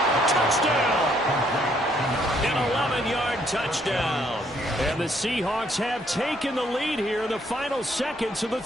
Touchdown! An 11-yard touchdown. And the Seahawks have taken the lead here in the final seconds of the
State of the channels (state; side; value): normal; both; correlation 0.68